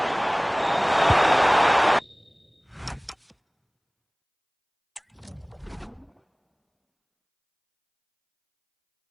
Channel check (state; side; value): identical; both; correlation 1.00